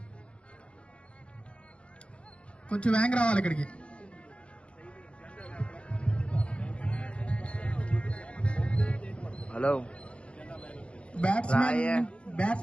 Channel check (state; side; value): late; right; 0.059 ms